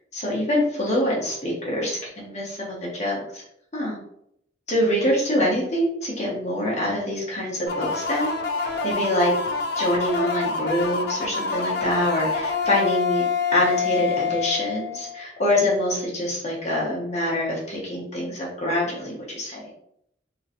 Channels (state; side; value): normal; both; correlation 0.15